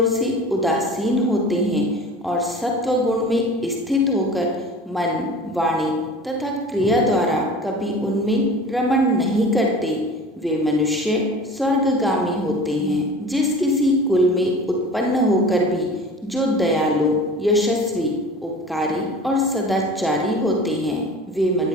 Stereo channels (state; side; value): normal; both; correlation 0.40